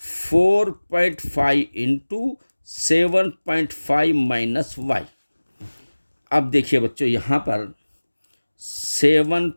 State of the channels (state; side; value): inverted; both; correlation -1.00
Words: into 7.5 minus y। अब देखिए बच्चों, यहाँ पर